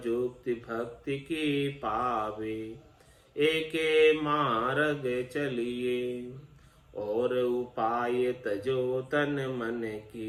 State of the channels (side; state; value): both; identical; correlation 1.00